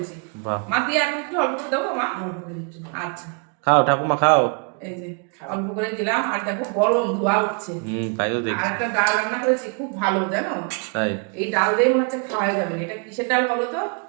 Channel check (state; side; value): quieter; left; 38.5 dB